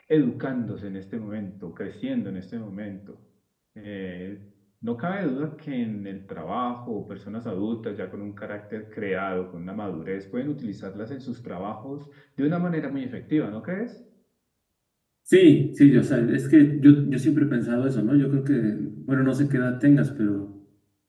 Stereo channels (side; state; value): both; identical; correlation 1.00